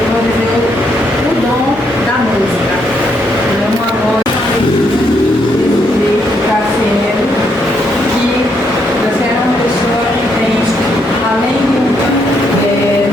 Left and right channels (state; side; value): normal; both; correlation 0.75